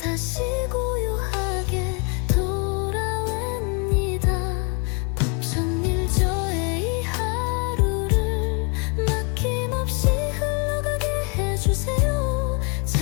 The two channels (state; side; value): quieter; right; 36.0 dB